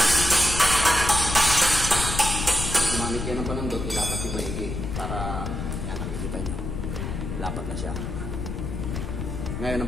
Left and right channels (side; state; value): left; noise; rumble, 4 dB below the sound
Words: Gumamit yan ng panundot, ilapat yung maigi para yan, nakikita nyo lapat na siya. Ngayon